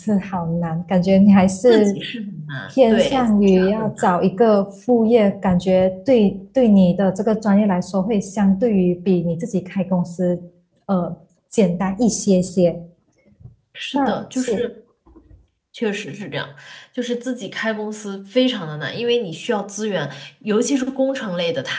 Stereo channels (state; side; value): identical; both; correlation 1.00